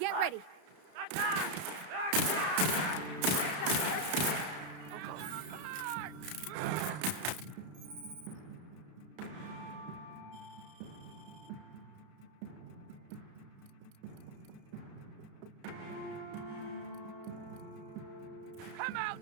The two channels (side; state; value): left; late; 32 ms